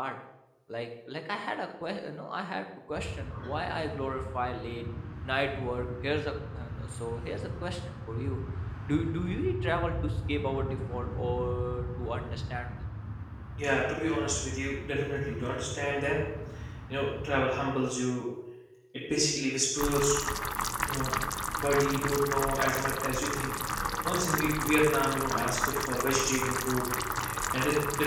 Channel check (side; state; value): both; identical; correlation 1.00